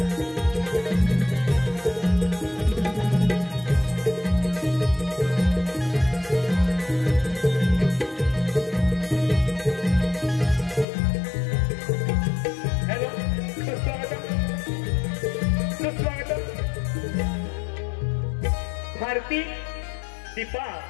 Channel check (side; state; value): right; drops out; at 10.9 s